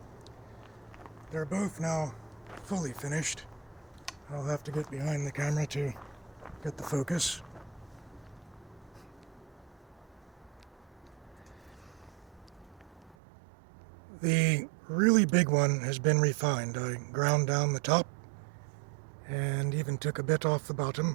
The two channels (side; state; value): left; drops out; at 13.2 s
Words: They're both now fully finished. I'll have to get behind the camera to get the focus. The really big one has been refined. I ground down the top and even took a bit off the